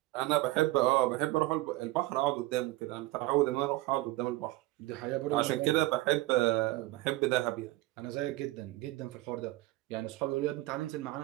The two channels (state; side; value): quieter; left; 18.8 dB